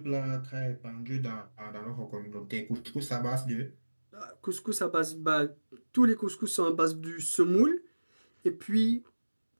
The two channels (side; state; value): both; inverted; correlation -1.00